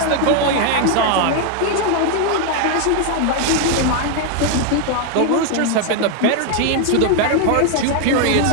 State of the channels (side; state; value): both; different; correlation 0.01